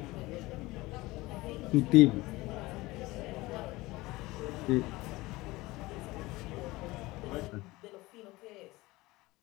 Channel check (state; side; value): quieter; right; 20.4 dB